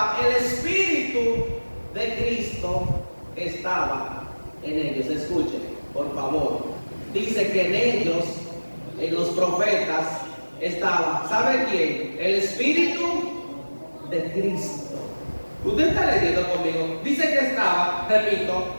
el Espíritu de Cristo estaba en ellos. Escuchen, por favor. Dice que en ellos, en los profetas, estaba, ¿sabe quién? El Espíritu de Cristo. Usted está leyendo conmigo. Dice que estaba, repito,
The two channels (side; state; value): both; inverted; correlation -1.00